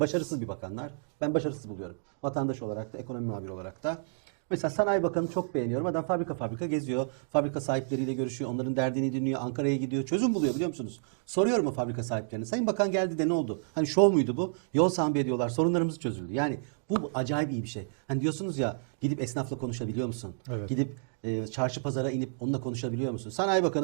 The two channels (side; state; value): left; silent; digital silence